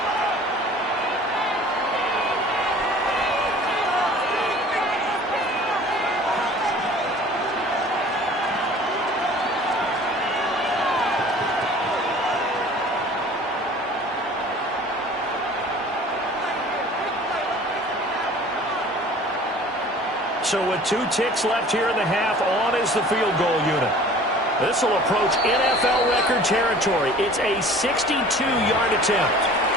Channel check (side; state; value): both; normal; correlation 0.47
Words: So with 2 ticks left here in the half, on is the field goal unit. This will approach NFL record territory. It's a 62-yard attempt.